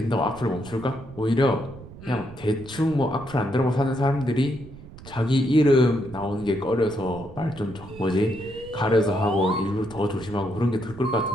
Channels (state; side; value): noise; right; rumble, 17 dB below the sound